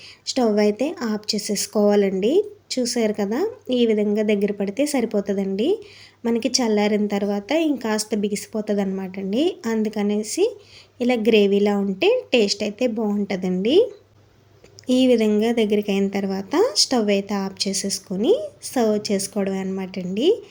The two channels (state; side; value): identical; both; correlation 1.00